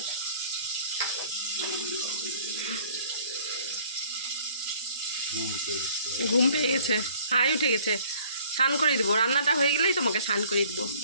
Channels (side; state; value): both; inverted; correlation -0.55